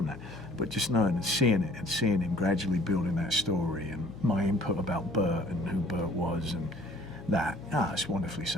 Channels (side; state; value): left; noise; hum, 19 dB below the sound